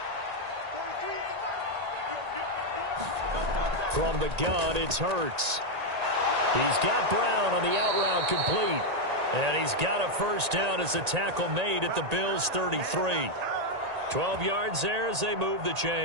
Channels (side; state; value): left; late; 1.8 ms